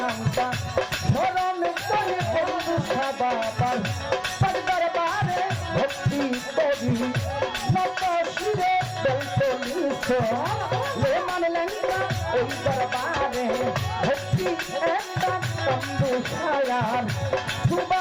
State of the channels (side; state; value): both; identical; correlation 1.00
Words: স্মরণ করে বন্ধু বাবার তার দরবারে ভক্তি করি নত শিরে লে মানলেন না ওই দরবারে ভক্তি একটা তম্বু ছায়ার